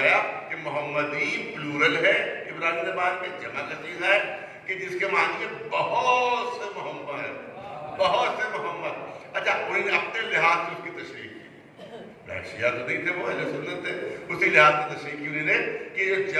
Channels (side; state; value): both; identical; correlation 1.00